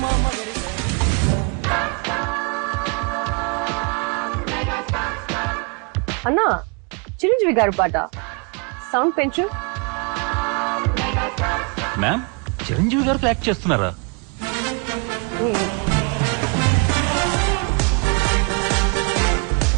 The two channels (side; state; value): left; quieter; 34.4 dB